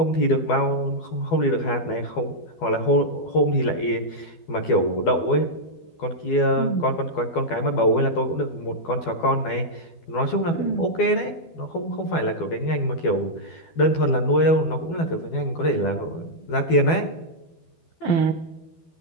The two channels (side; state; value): right; late; 12 ms